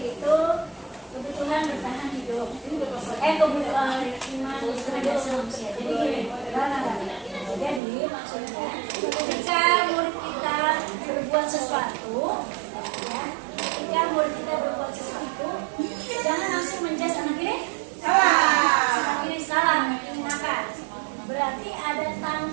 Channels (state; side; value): drops out; left; at 7.8 s